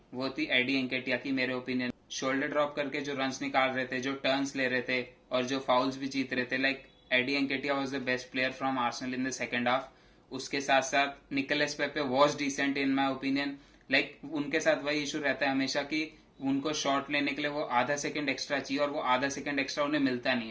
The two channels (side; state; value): both; identical; correlation 1.00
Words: वो थी एडी एंकेटिया की मेरे ओपिनियन। शोल्डर ड्रॉप करके जो रन्स निकाल रहे थे, जो टर्न्स ले रहे थे और जो फाउल्स भी जीत रहे थे, like Eddie Nketiah was the best player from Arsenal in the second half. उसके साथ साथ Nicolas Pepe was decent in my opinion. Like उनके साथ वही इशू रहता है हमेशा कि उनको शॉट लेने के लिए वो आधा सेकंड एक्स्ट्रा चाहिए और वो आधा सेकंड एक्स्ट्रा उन्हें मिलता नहीं